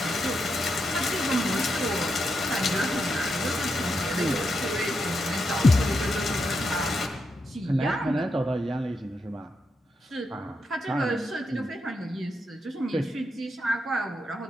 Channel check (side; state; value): both; normal; correlation 0.84